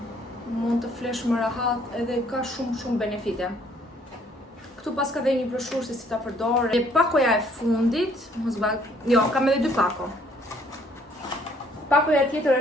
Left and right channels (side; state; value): both; normal; correlation 0.63